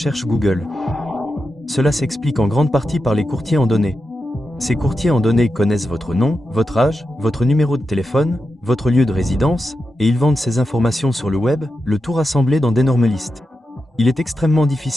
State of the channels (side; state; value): both; normal; correlation 0.89